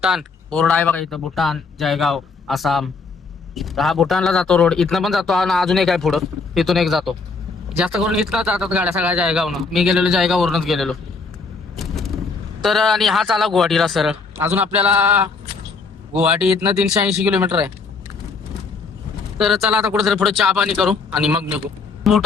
बोर्ड आहे बघा इथं, भूटान, जायगाव, आसाम. हा भूटानला जातो रोड. इथनं पण जातो, आणि अजून एक आहे पुढं, तिथून एक जातो. जास्त करून इथनं जातात गाड्या सगळ्या जायगावनं. मी गेलेलो जायगाववरूनच गेलेलो. तर आणि हा चाला गुवाहाटीला सरळ. अजून आपल्याला गुवाहाटी इथनं 380 किलोमीटर आहे. तर चला आता कुठेतरी पुढे चहा पाणी करू आणि मग निघू.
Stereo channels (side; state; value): right; quieter; 4.4 dB